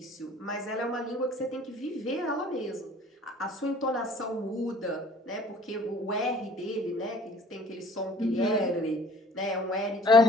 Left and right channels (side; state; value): both; normal; correlation 0.53